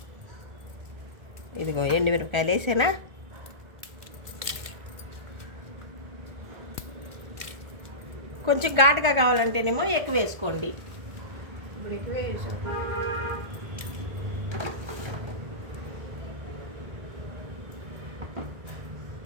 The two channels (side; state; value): left; late; 1.4 ms